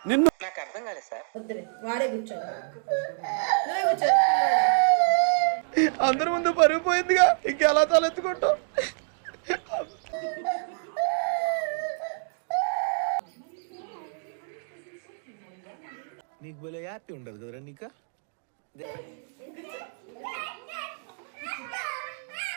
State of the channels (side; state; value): left; silent; digital silence